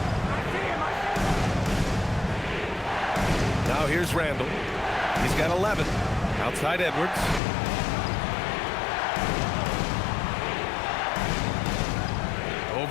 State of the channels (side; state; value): right; drops out; at 7.4 s